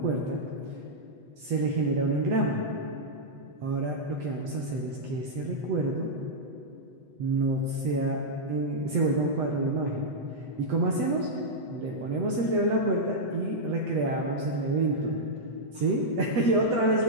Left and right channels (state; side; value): late; left; 8.1 ms